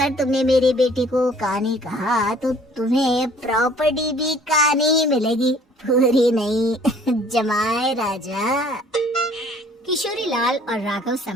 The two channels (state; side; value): normal; both; correlation 0.55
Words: तुमने मेरी बेटी को कहानी कहा तो तुम्हें प्रॉपर्टी भी कहानी ही मिलेगी, पूरी नहीं। जमाए राजा। किशोरी लाल और राघव